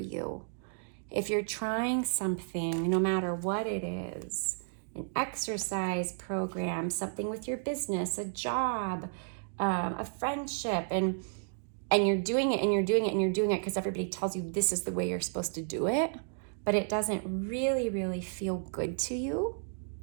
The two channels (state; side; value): silent; left; digital silence